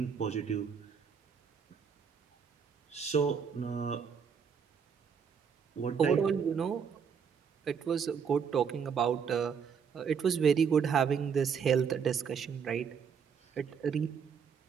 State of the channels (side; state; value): left; quieter; 6.8 dB